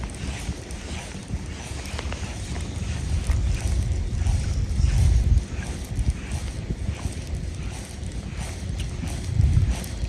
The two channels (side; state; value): both; identical; correlation 1.00